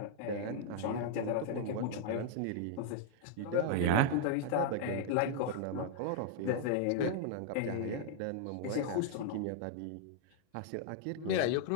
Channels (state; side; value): different; both; correlation 0.00